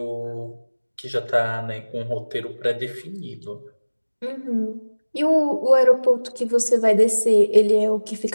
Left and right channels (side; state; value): both; inverted; correlation -1.00